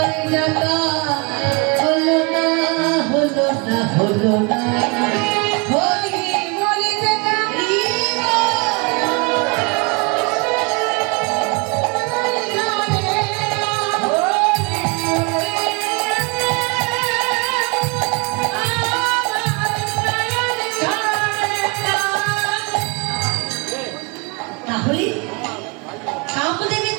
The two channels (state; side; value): quieter; left; 30.5 dB